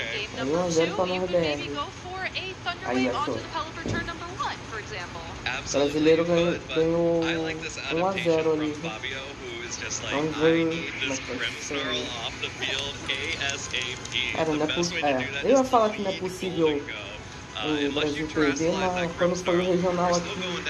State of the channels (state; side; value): identical; both; correlation 1.00